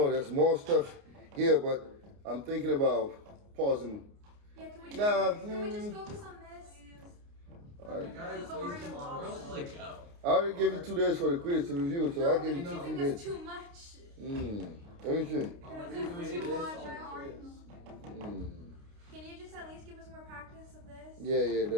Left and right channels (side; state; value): left; late; 29 ms